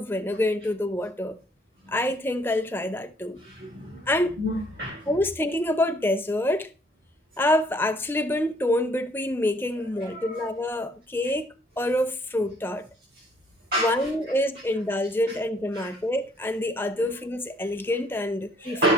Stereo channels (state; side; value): normal; both; correlation 0.64